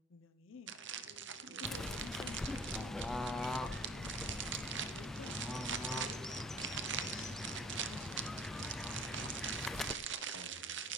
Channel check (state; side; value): normal; both; correlation 0.50